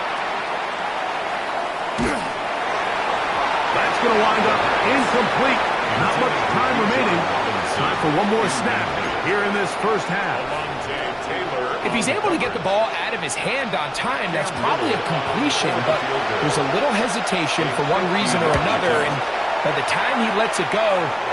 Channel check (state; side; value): identical; both; correlation 1.00